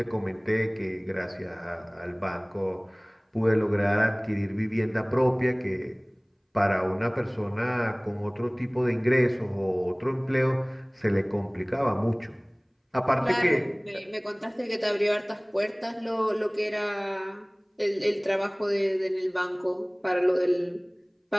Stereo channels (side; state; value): both; identical; correlation 1.00